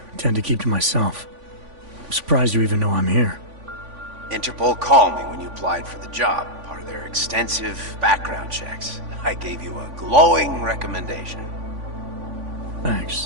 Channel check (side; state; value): left; late; 3.5 ms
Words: tend to keep to myself. I'm surprised you even know I'm here. Interpol called me when you applied for the job, part of their extensive background checks. I gave you a glowing recommendation.